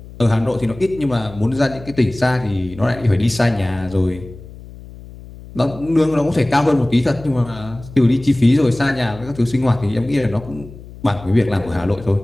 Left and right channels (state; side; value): noise; left; hum, 17 dB below the sound